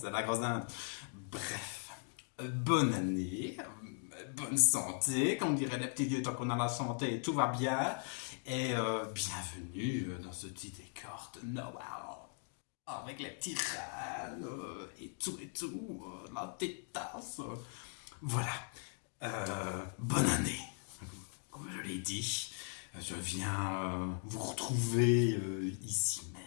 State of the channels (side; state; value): right; silent; 52 dB below the other